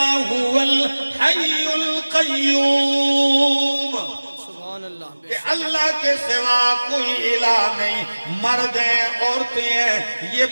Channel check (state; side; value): inverted; both; correlation -1.00